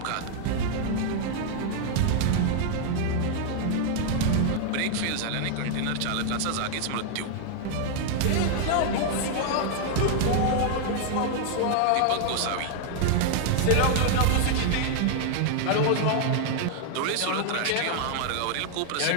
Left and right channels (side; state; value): both; different; correlation 0.00